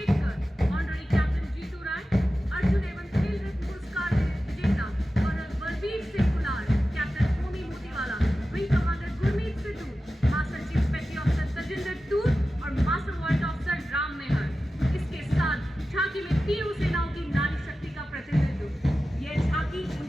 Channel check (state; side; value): normal; both; correlation 0.94